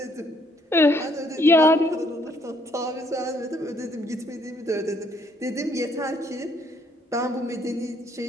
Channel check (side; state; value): both; normal; correlation 0.68